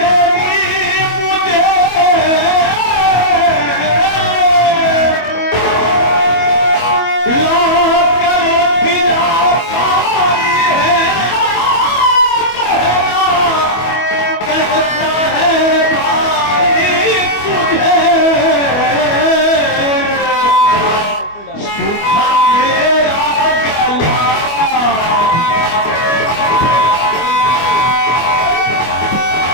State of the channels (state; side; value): late; right; 25 ms